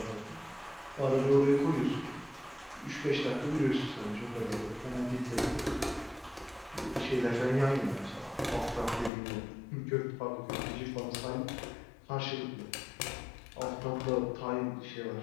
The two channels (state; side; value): drops out; right; at 9.1 s